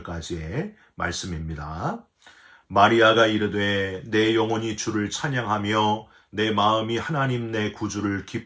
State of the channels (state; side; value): identical; both; correlation 1.00